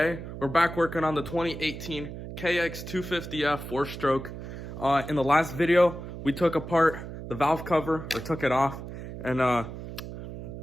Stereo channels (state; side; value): noise; right; hum, 10 dB below the sound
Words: we're back working on the 2018 Kx250F 4-stroke. In the last video we took apart the valve cover, or took it off, and